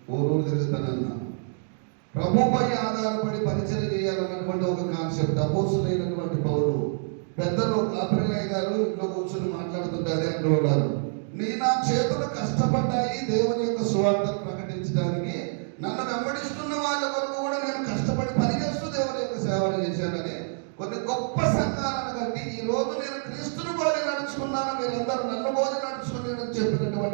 ఊరు తిరుగుతానన్నా. ప్రభుపై ఆధారపడి పరిచయం చేయాలన్నటువంటి ఒక కాన్సెప్ట్. అపోస్తులైనటువంటి పౌలు పెద్దలు కాపరిలయ్య గారు ఇంట్లో కూర్చొని మాట్లాడుతుంటే అదే అంటూ ఉన్నారు, నా చేతులు కష్టపడ్డాయి దేవుని యొక్క సువార్తను ప్రకటించడానికి. నన్ను వెంబడిస్తున్న వాళ్ళ వరకు కూడా నేను కష్టపడి పనిచేస్తూ దేవుని యొక్క సేవలు చేశానని కొన్ని గొప్ప సంఘాలను కట్టి ఈ రోజు నేను క్రీస్తుని పోలి నడుచుకున్నాను, మీరందరూ నన్ను పోలి నడుచుకుని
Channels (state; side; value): silent; left; digital silence